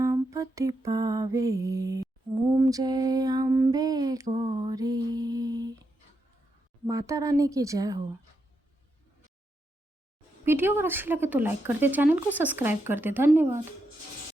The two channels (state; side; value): normal; both; correlation 0.83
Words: पावे। ओम जय अम्बे गौरी। माता रानी की जय हो। वीडियो अगर अच्छी लगे तो लाइक कर दे, चैनल को सब्सक्राइब कर दे। धन्यवाद।